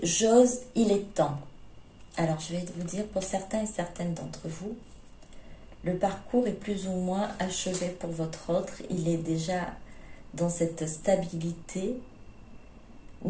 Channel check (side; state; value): both; identical; correlation 1.00